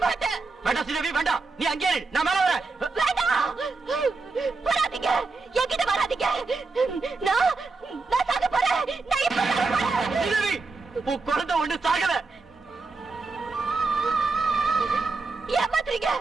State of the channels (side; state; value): left; quieter; 3.9 dB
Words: மாட்டேன். வேண்டாம் ஸ்ரீதேவி, வேண்டாம். நீ அங்கே இரு, நான் மேல வரேன். வேண்டாம், வராதீங்க. என்கிட்ட வராதீங்க. நான் சாக போறேன். நான் இப்ப சாக போறேன். ஸ்ரீதேவி, உன் குழந்தை ஒண்ணு சாகல. ஏமாத்துறீங்க.